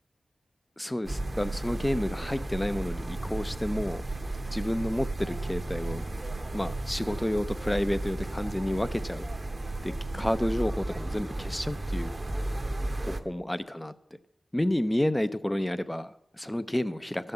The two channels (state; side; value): normal; both; correlation 0.98